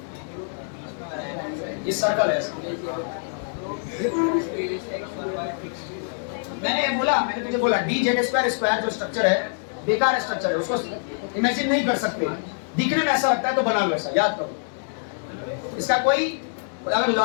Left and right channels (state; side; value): silent; right; digital silence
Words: ये सर्कल है। मैंने तुझे बोला dz स्क्वायर जो स्ट्रक्चर है बेकार स्ट्रक्चर है, उसको इमेजिन नहीं कर सकते, दिखने में ऐसा लगता है तो बना लो ऐसा, याद करो। इसका कोई अगर